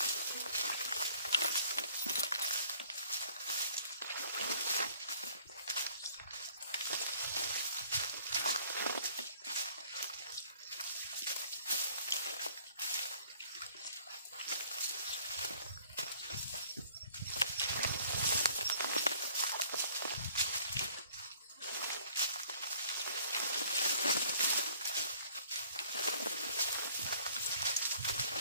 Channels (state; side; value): inverted; both; correlation -0.56